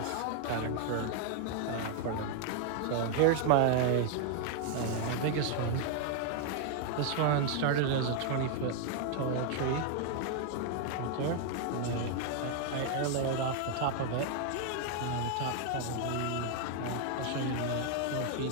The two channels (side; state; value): both; different; correlation 0.00